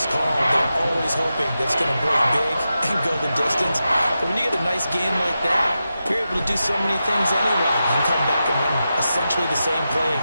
called, they're always hoping that it's going to break big and go the distance. But when you get a nice game like that, you're able to do so many things anyway. You can come back and run essentially the same play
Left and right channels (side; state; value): both; inverted; correlation -0.90